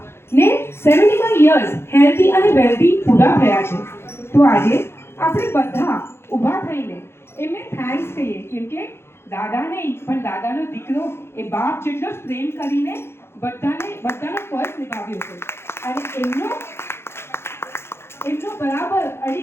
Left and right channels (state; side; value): late; right; 0.12 ms